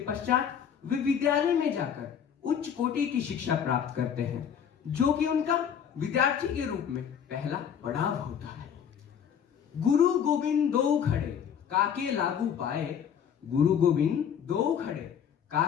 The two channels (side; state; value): right; quieter; 8.2 dB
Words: वे विद्यालय में जाकर उच्च कोटि की शिक्षा प्राप्त करते हैं, जो कि उनका विद्यार्थी के रूप में पहला पड़ाव होता है। गुरु गोविंद दो खड़े काके लागू पाए, गुरु गोविंद दो खड़े